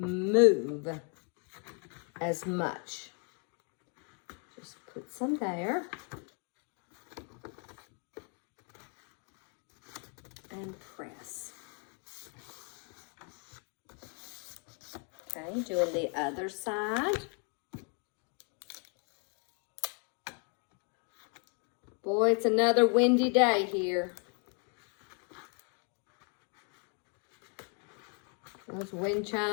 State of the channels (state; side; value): quieter; right; 39.0 dB